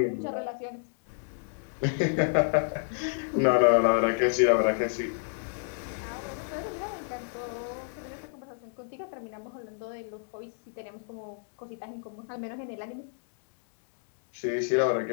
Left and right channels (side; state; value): right; silent; digital silence